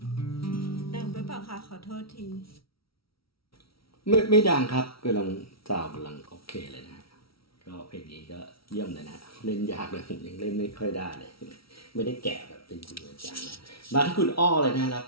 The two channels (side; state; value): right; late; 0.75 ms